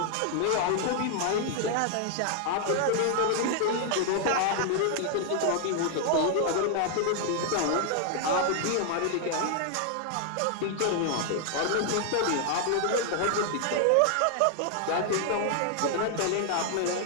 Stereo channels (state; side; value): different; both; correlation 0.00